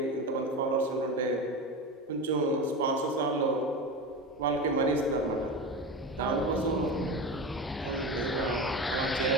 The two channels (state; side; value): normal; both; correlation 0.25